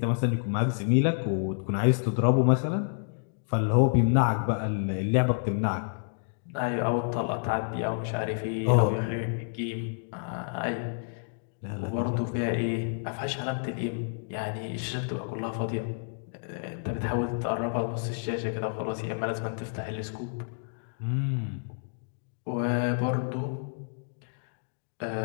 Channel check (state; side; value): silent; right; digital silence